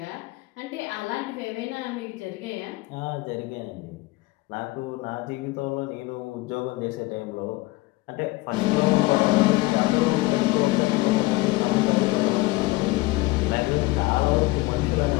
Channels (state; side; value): quieter; right; 21.4 dB